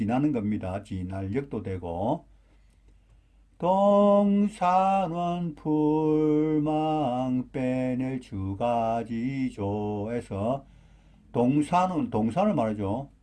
겁니다. 지날력도 되고 동산원 풀망 빼낼 주가지조에서 동산을 말하죠.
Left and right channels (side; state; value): both; identical; correlation 1.00